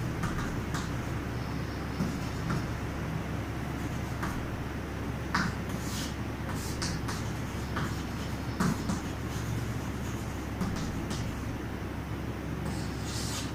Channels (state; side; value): identical; both; correlation 1.00